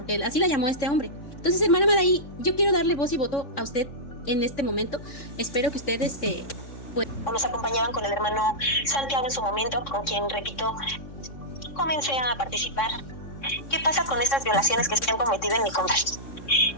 así la llamó a este hombre. Entonces, hermana Madaí, yo quiero darle voz y voto a usted en este momento. Espero que usted pues... Nos acompañaban con el hermano Santiago en su momento, con quien, repito, comencé a participar. ¿Qué pasa con estas violaciones que se han cometido en mi contra?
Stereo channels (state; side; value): late; right; 3.6 ms